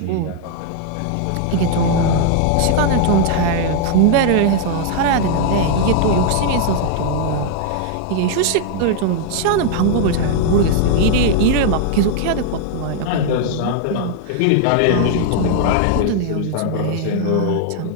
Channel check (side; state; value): both; different; correlation 0.00